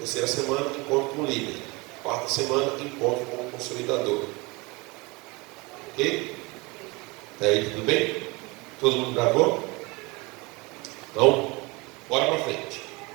semana, encontro com o líder. Quarta semana, encontro com o consolidador. Ok? Até aí, tudo bem? Todo mundo gravou? Então, bora para frente.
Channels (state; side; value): quieter; left; 25.6 dB